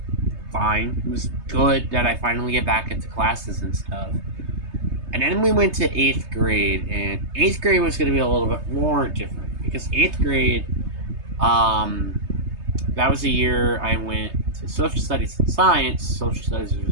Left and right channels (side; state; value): left; late; 3.2 ms